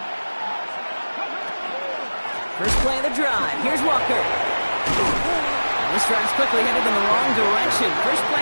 First play of the drive. Here's Walker. And this drive's quickly headed in the wrong direction. First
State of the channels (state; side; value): inverted; both; correlation -1.00